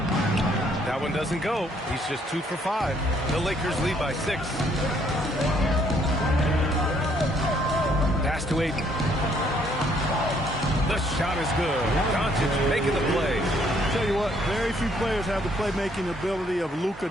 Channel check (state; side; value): normal; both; correlation 0.67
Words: That one doesn't go. He's just 2 for 5. The Lakers lead by 6. Pass to Ayton. The shot is good. Doncic making the play. Tell you what, very few players have the playmaking ability of Luka